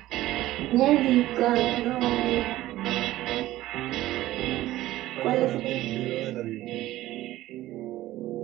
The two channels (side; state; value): left; quieter; 15.6 dB